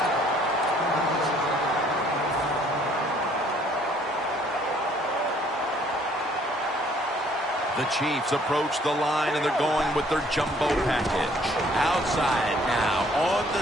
The Chiefs approach the line, and they're going with their jumbo package. Outside now on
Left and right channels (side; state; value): both; normal; correlation 0.61